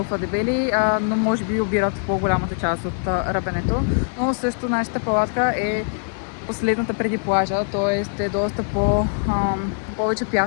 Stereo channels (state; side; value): silent; right; digital silence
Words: дебели, но може би обират по-голямата част от ръбенето. Но също нашата палатка е последната преди плажа, т.е. е доста повече